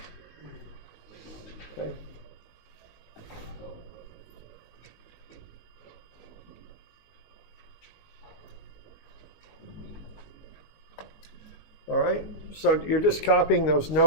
Okay. All right, so you're just copying those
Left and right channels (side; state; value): right; late; 19 ms